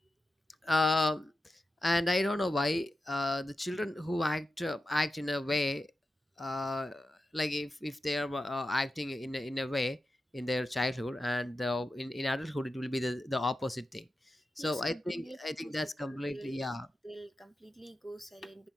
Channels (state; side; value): normal; both; correlation 0.91